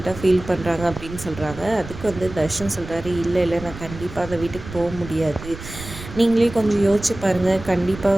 ஃபீல் பண்ணுறாங்க அப்படின்னு சொல்கிறாங்க. அதுக்கு வந்து தர்ஷன் சொல்கிறாரு, இல்லை இல்லை, நான் கண்டிப்பாக அந்த வீட்டுக்கு போக முடியாது. நீங்களே கொஞ்சம் யோசிச்சு பாருங்கள், கண்டிப்பாக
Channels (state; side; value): noise; right; rumble, 13 dB below the sound